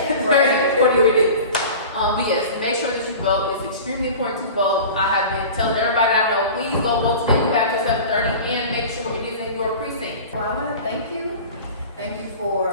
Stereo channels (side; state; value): both; inverted; correlation -0.36